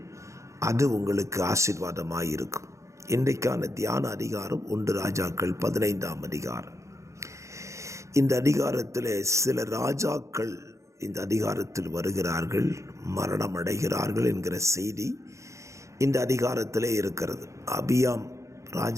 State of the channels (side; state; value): left; late; 0.15 ms